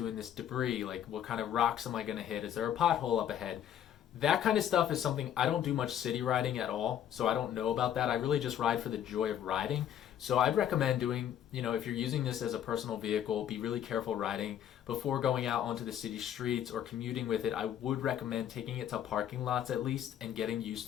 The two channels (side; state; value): right; quieter; 10.2 dB